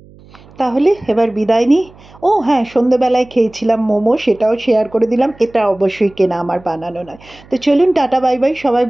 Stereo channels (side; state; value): right; noise; hum, 24 dB below the sound